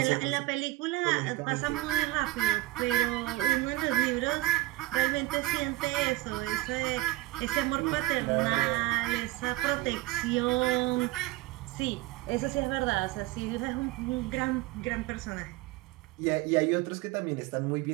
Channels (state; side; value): quieter; left; 17.8 dB